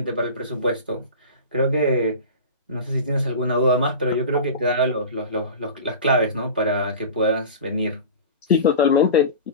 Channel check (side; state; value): both; inverted; correlation -0.32